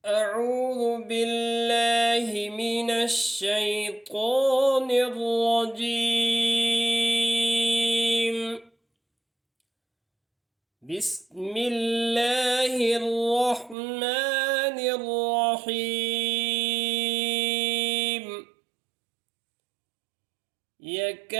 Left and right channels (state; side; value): drops out; left; at 13.8 s